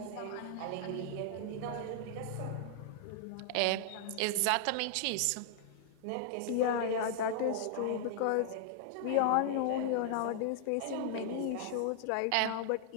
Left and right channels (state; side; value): different; both; correlation -0.01